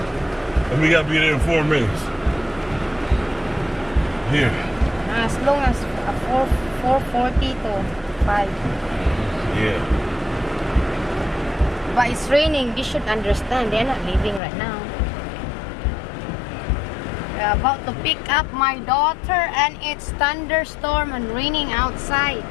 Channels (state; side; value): drops out; right; at 14.4 s